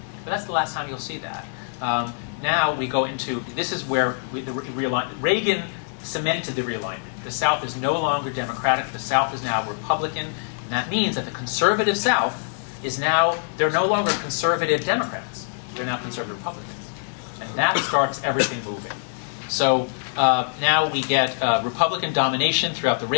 But that's the last time you'll see that. Now we go into, this is where Reagan cemented the realignment. The South is no longer Democratic. The South is now Republican. And that means that the conservative South is now, they're no longer conservative Democrats. They're now conservative Republicans. And that starts everything moving. So now we get Republican domination throughout the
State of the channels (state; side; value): silent; right; digital silence